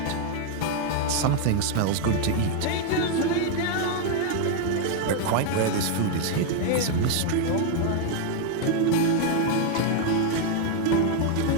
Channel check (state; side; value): different; both; correlation 0.00